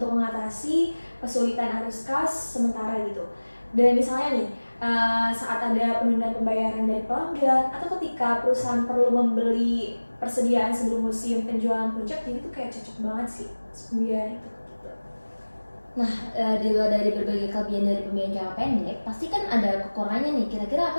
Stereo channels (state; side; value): inverted; both; correlation -1.00